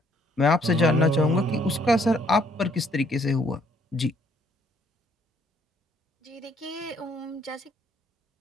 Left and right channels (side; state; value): both; normal; correlation 0.66